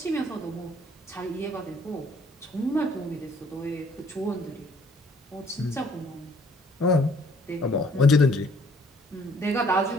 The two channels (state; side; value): normal; both; correlation 0.60